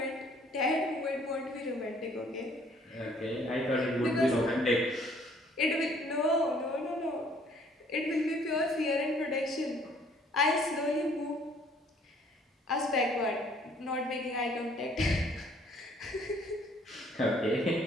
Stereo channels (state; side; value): normal; both; correlation 0.60